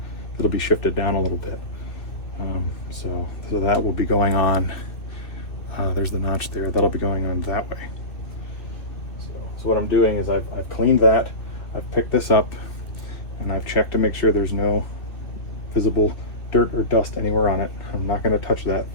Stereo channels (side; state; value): right; late; 2.6 ms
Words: it'll be shifted down a little bit. So that will be going on, there's the notch there, that'll be going on that way. So what I'm doing is I've cleaned that, I've picked this up, and I've checked to make sure there's no visible dirt or dust anywhere on it. I'm not going to touch that